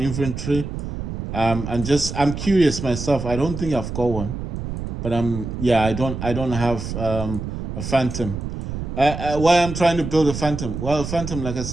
I'm curious myself. I don't think I've got one, but I don't have a Phantom. Why I'm trying to build a Phantom? Well, a Phantom, like I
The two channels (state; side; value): noise; right; rumble, 6 dB below the sound